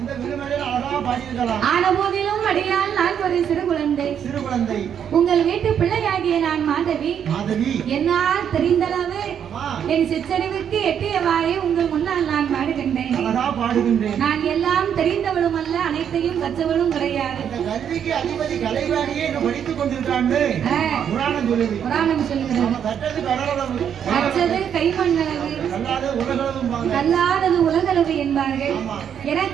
ஆன போதிலும் அடியால் நான் ஒரு சிறு குழந்தை. உங்கள் வீட்டு பிள்ளையாகிய நான் மாதவி. என்னால் தெரிந்தளவு என் சிற்றறிவுக்கு எட்டியவாறே உங்கள் முன்னால் நான் பாடுகின்றேன். நான் எல்லாம் தெரிந்தவளும் அல்ல, அனைத்தையும் கற்றவளும் கிடையாது. புராணம் சொல்லுகிறது, கற்றது கைமண்ணளவு, கல்லாதது உலகளவு என்பார்கள்.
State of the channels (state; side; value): quieter; left; 8.5 dB